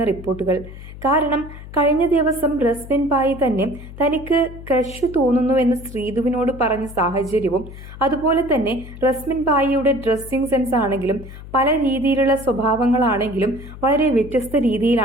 റിപ്പോർട്ടുകൾ. കാരണം കഴിഞ്ഞ ദിവസം റസ്മിൻ ബായ് തന്നെ തനിക്ക് ക്രഷ് തോന്നുന്നുവെന്ന് ശ്രീധുവിനോട് പറഞ്ഞ സാഹചര്യവും, അതുപോലെ തന്നെ റസ്മിൻ ബായിയുടെ ഡ്രസ്സിംഗ് സെൻസ് ആണെങ്കിലും പല രീതിയിലുള്ള സ്വഭാവങ്ങളാണെങ്കിലും വളരെ വ്യത്യസ്ത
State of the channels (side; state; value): left; noise; hum, 14 dB below the sound